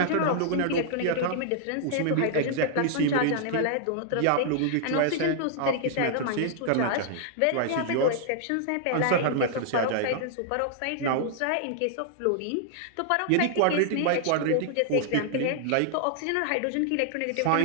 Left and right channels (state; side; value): different; both; correlation -0.01